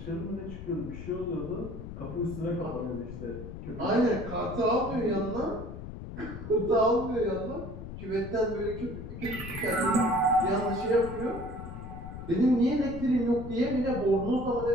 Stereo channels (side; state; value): left; noise; rumble, 10 dB below the sound